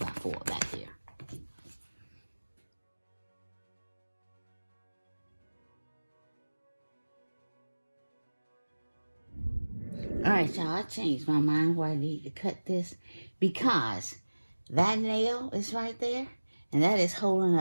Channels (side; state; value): both; inverted; correlation -1.00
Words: back there. Alright, y'all, I changed my mind where I need to cut this because that nail is right there and that is holding